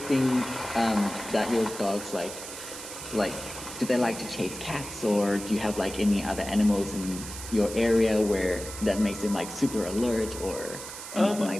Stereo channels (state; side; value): noise; right; hiss, 10 dB below the sound